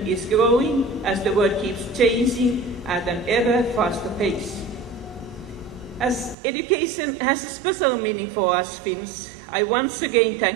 is growing as the world keeps changing at an ever faster pace. As education has a special meaning for us Finns, I once again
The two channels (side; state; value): left; drops out; at 6.4 s